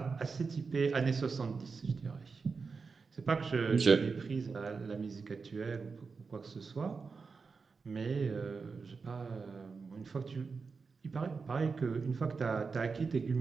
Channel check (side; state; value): left; quieter; 4.8 dB